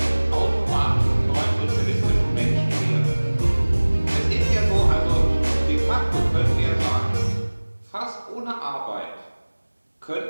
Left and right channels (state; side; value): inverted; both; correlation -1.00